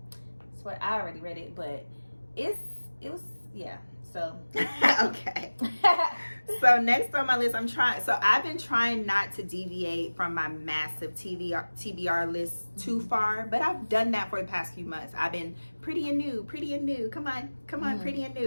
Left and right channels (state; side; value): inverted; both; correlation -1.00